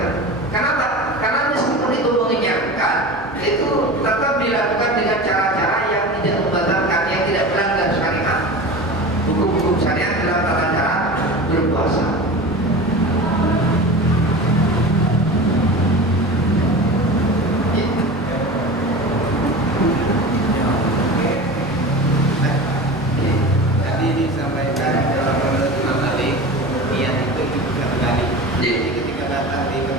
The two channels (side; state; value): both; normal; correlation 0.32